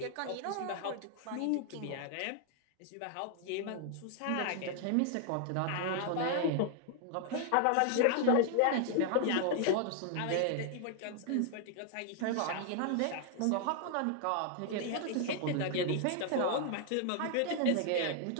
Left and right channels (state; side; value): different; both; correlation 0.00